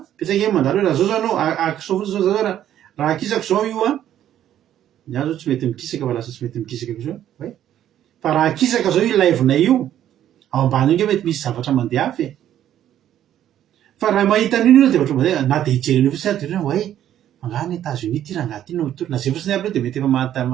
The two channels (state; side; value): quieter; left; 11.2 dB